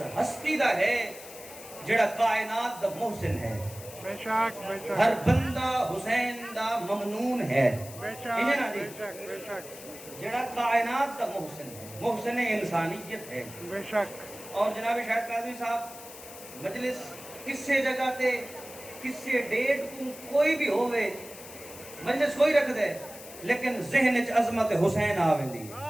ہستی دا ہے جڑا کائنات دا محسن ہے بے شک بے شک ہر بندہ حسین دا ممنون ہے بے انہیں نا شک جی بے شک بے شک جڑا کائنات دا محسن ہے محسن انسانیت ہے بے شک اور جناب شاہد قاضی صاحب مجلس کسے جگہ تے کسے ڈیٹ کو کوئی بھی ہوئے مجلس کوئی رکھ دے لیکن ذہن اچ عظمت حسین آوندی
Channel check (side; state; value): left; noise; hiss, 15 dB below the sound